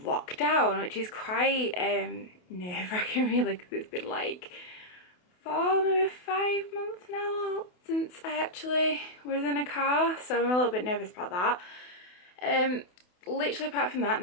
lockdown, which is quite nerve-wracking really, because it's been like 4, maybe 5 months now since I actually was in a car, so I'm a little bit nervous about that. Literally apart from that,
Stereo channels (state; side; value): late; right; 28 ms